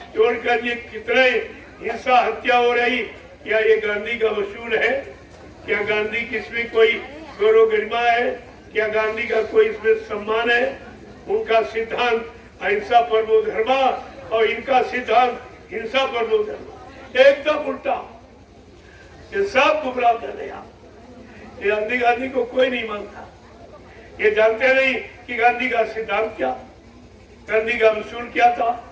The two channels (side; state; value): both; identical; correlation 1.00